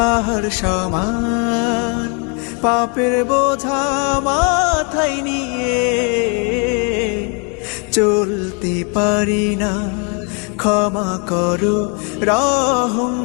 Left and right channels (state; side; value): quieter; right; 35.8 dB